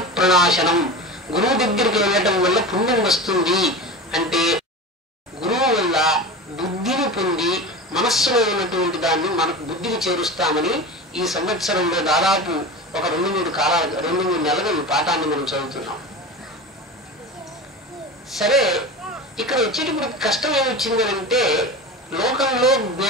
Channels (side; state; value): both; normal; correlation 0.29